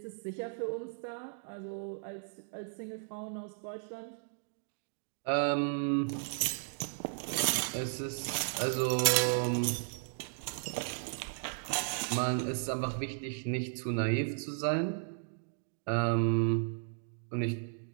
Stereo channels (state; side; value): silent; left; digital silence